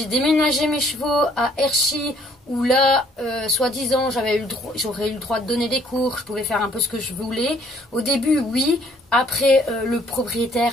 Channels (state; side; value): normal; both; correlation 0.62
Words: j'ai déménagé mes chevaux à Herchy, où là, soi-disant, j'aurais eu le droit de donner des cours, je pouvais faire un peu ce que je voulais. Au début, oui. Après, le